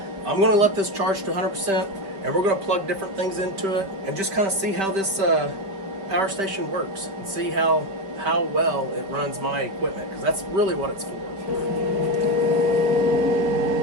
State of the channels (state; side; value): late; left; 5.1 ms